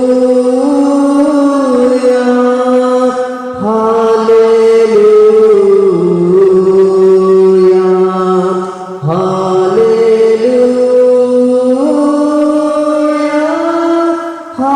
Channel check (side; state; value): both; identical; correlation 1.00